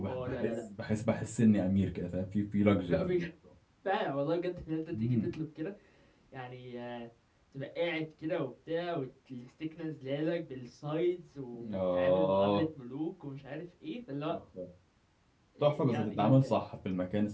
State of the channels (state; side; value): identical; both; correlation 1.00